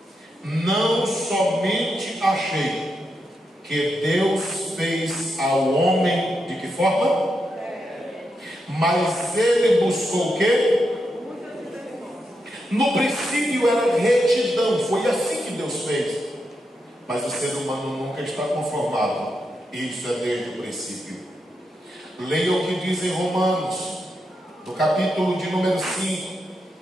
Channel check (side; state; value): both; normal; correlation 0.84